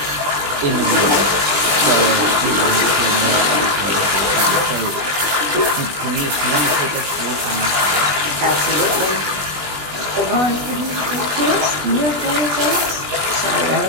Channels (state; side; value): late; left; 20 ms